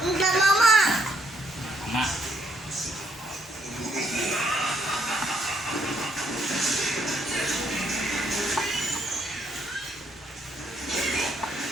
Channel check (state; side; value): normal; both; correlation 0.72